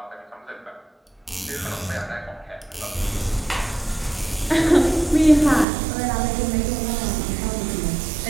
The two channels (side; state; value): left; drops out; at 5.7 s